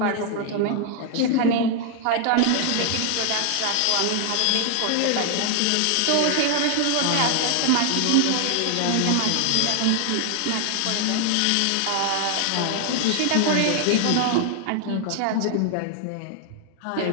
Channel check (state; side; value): different; both; correlation 0.00